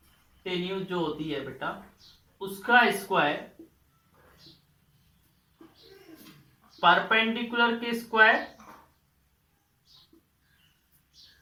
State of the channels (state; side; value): identical; both; correlation 1.00